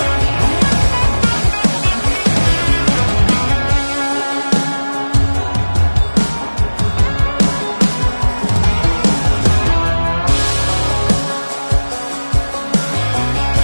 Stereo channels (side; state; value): both; inverted; correlation -1.00